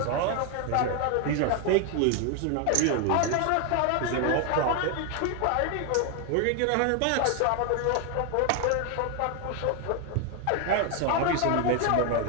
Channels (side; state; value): both; different; correlation 0.01